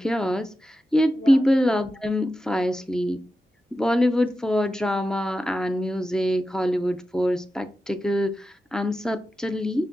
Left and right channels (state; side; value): normal; both; correlation 0.91